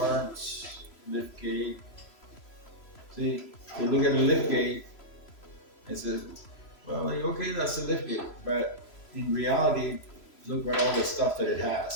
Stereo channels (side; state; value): right; late; 3.0 ms